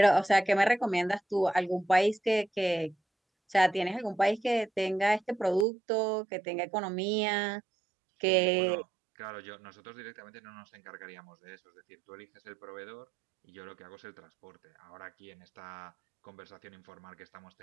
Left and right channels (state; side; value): drops out; left; at 5.7 s